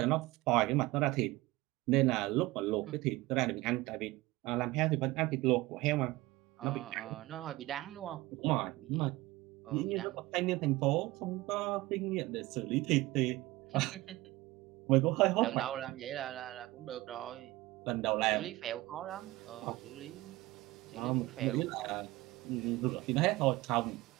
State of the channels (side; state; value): left; quieter; 19.6 dB